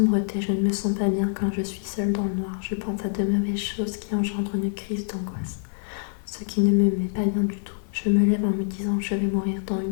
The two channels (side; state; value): right; silent; 59 dB below the other